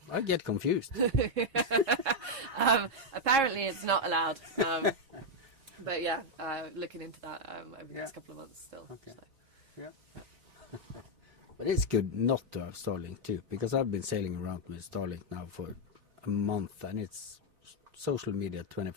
I get confused. apparently it's not allowed. But yeah, looking into that over the next couple of months still. So. But it's good not to have Starlink too, because I've been sailing around with Starlink now for a month, and it's social media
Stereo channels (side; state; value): left; late; 3.7 ms